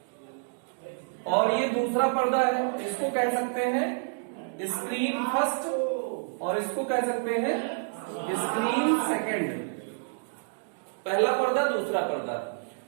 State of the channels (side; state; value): left; silent; digital silence